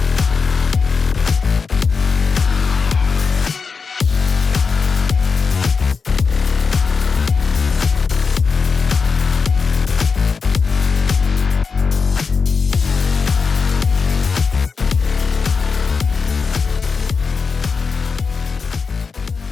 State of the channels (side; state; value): right; quieter; 5.1 dB